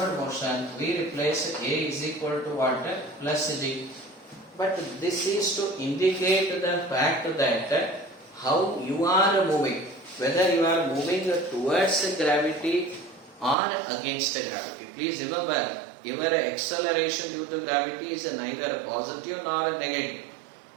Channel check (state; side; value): drops out; left; at 13.6 s